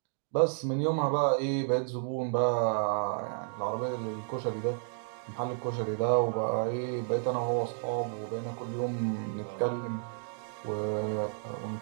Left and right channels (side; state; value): left; silent; 57 dB below the other